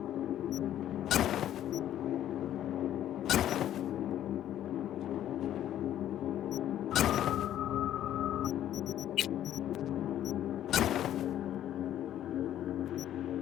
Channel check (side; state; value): right; quieter; 11.7 dB